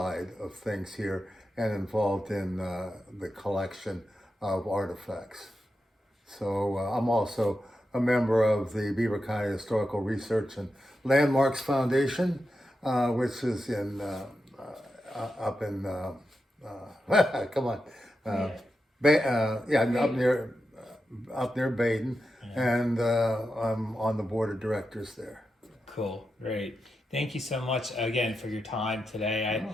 of things here and involved in the collection of artifacts. So I'm also a member of the Beaver County Historical Research and Landmarks Foundation, which is in up in come on, up near Baden, and I'm on the board of directors there. Cool, great. Thank you so much again for your time today.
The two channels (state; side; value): normal; both; correlation 0.89